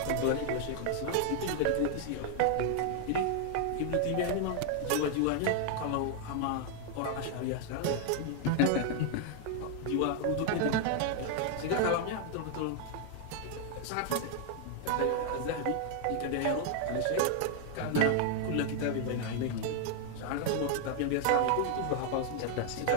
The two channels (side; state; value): both; different; correlation 0.00